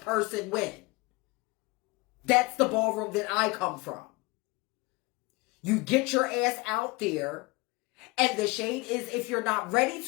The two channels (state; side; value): quieter; right; 24.4 dB